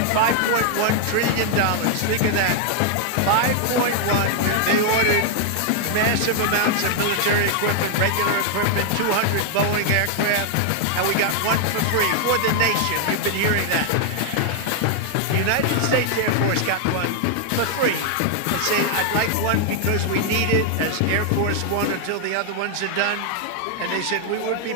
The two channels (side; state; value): both; different; correlation 0.00